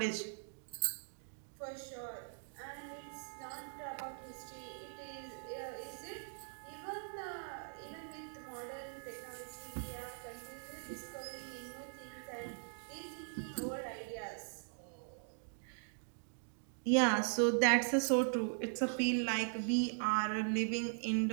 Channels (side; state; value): left; silent; digital silence